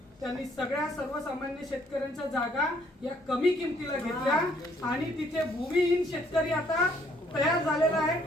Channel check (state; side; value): normal; both; correlation 0.65